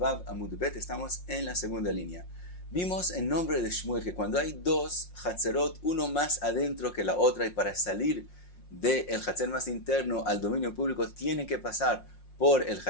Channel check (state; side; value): late; right; 5.6 ms